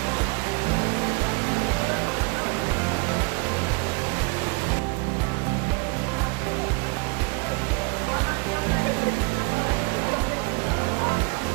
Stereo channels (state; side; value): quieter; left; 30.0 dB